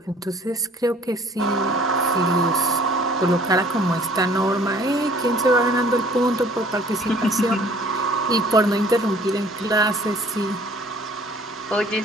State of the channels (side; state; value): both; normal; correlation 0.54